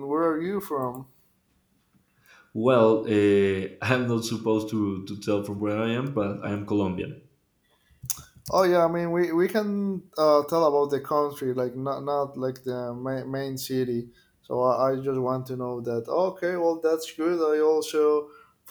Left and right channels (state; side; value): identical; both; correlation 1.00